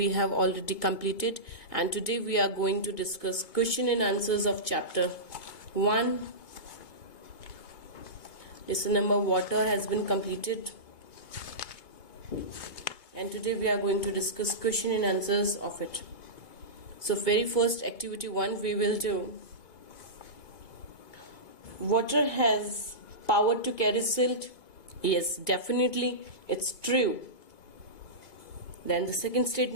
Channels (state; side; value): late; right; 2.2 ms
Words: have already completed, and today we are going to discuss question and answers of chapter 1. Lesson number water has been completed, and today we are going to discuss question and answers of it. So very first activity 1 we will do. Water has power to carry silt? Yes, definitely, it's true. Then the second